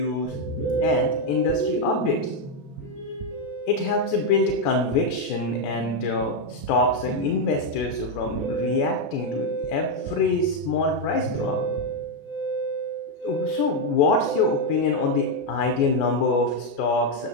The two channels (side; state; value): right; late; 14 ms